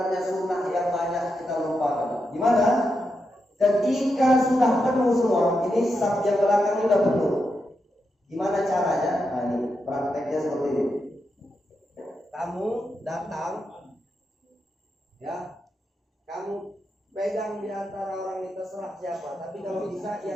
sunnah yang banyak kita lupakan. Gimana? Ketika sudah penuh semua, ini saf yang belakang ini udah penuh. Gimana caranya? Nah, ini prakteknya seperti ini. Kamu datang, ya, kamu pegang di antara orang ini terserah siapa. Tapi kalau bisa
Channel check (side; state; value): both; normal; correlation 0.85